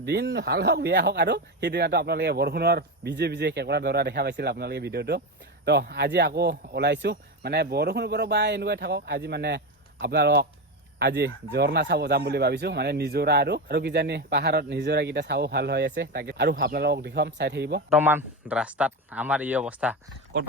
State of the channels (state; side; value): normal; both; correlation 0.17